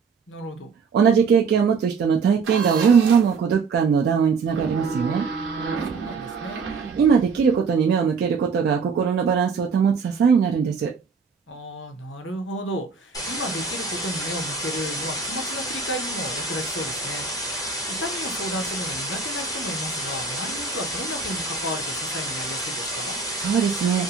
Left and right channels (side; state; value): left; quieter; 5.1 dB